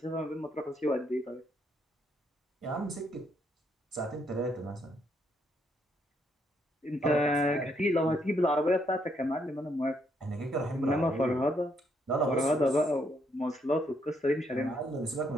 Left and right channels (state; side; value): normal; both; correlation 0.73